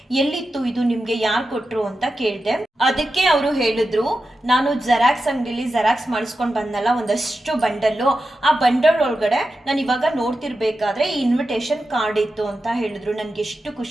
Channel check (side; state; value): both; normal; correlation 0.91